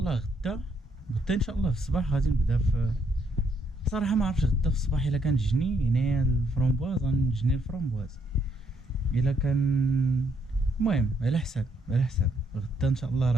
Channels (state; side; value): normal; both; correlation 0.73